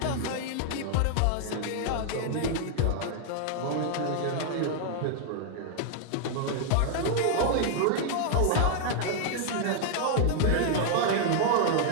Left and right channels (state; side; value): different; both; correlation 0.00